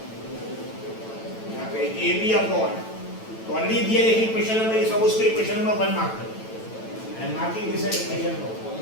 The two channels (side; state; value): right; late; 9.0 ms